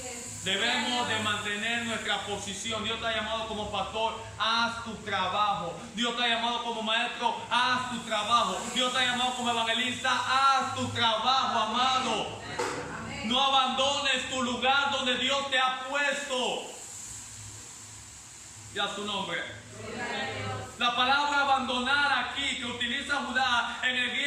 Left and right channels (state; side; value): identical; both; correlation 1.00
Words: Debemos de mantener nuestra posición. Dios te ha llamado como pastor, haz tu trabajo. Dios te ha llamado como maestro, haz tu trabajo. Dios te ha llamado como evangelista, haz tu trabajo, amado. No abandones tu lugar donde Dios te ha puesto. Y a su nombre. La palabra abandonar aquí que utiliza Judá en el